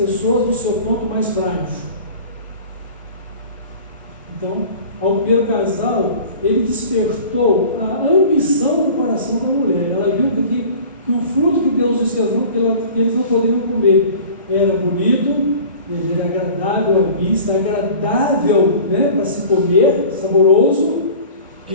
no seu ponto mais frágil. Então, ao primeiro casal, ele despertou a ambição do coração da mulher. Ela viu que o fruto que Deus disse que eles não poderiam comer era bonito, ele era agradável à vista, agradável, né, para se comer, saboroso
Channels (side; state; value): both; inverted; correlation -0.42